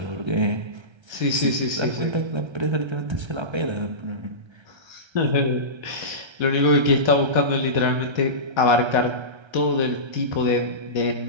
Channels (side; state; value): left; late; 1.3 ms